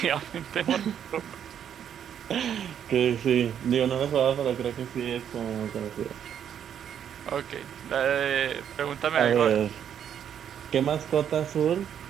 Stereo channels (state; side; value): quieter; left; 9.0 dB